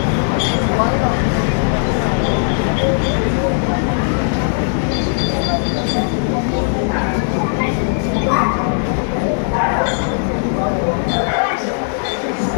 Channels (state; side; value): silent; right; 56 dB below the other